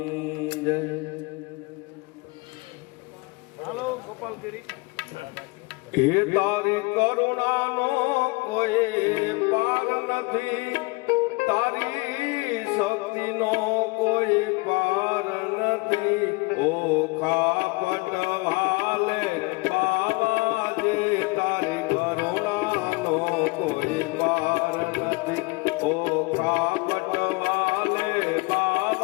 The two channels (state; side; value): quieter; right; 26.4 dB